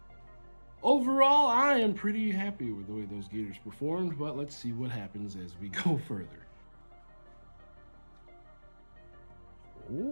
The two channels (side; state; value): both; inverted; correlation -1.00